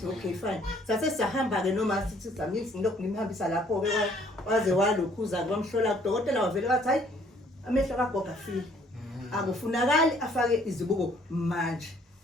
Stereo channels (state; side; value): normal; both; correlation 0.61